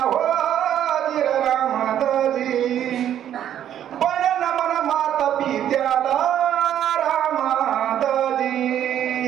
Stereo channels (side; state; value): left; quieter; 10.5 dB